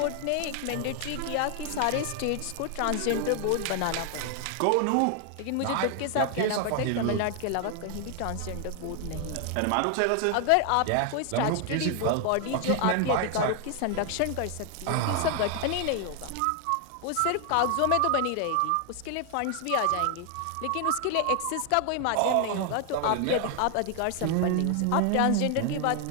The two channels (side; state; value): both; different; correlation 0.00